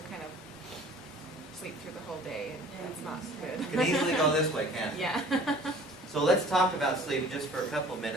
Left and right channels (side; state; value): both; normal; correlation 0.49